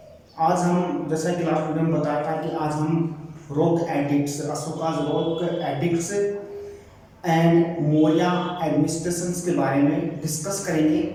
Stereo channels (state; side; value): identical; both; correlation 1.00